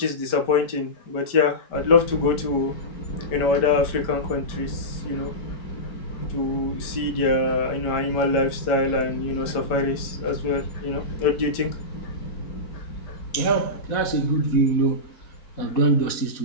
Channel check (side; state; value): right; late; 5.1 ms